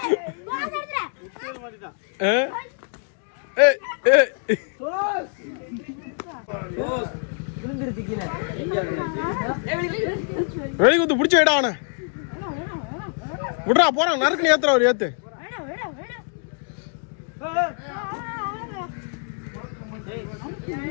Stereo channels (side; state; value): right; silent; 55 dB below the other